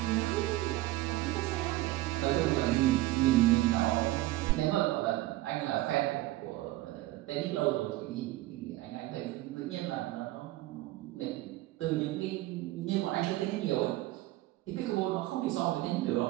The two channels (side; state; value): left; quieter; 17.2 dB